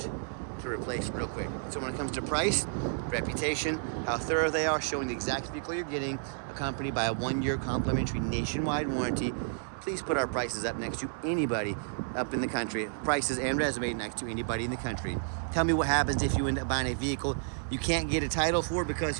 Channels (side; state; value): left; silent; digital silence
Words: to replace real quick. So when it comes to price, reputation, how thorough they are, showing the exact vehicle you're getting, accompanied by a 1-year complimentary nationwide warranty, please put our prices up next to anybody up in the country. Prices and resume next to anybody in the country. Tell me what happens if you end up buying a vehicle you can't get a title for because